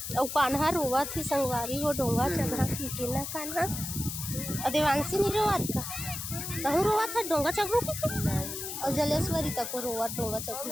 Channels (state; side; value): noise; left; hiss, 6 dB below the sound